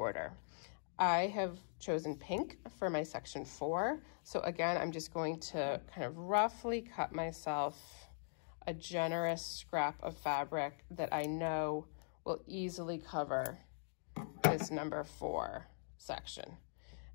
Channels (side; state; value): right; silent; digital silence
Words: I have chosen pink for my section 4. So again, I'm just going to kind of roughly cut myself a generous scrap of fabric that I know will easily cover this number 4 section.